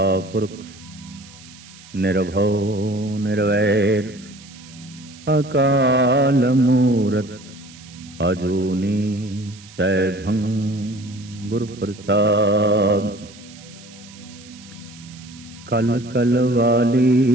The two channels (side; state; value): right; noise; hiss, 21 dB below the sound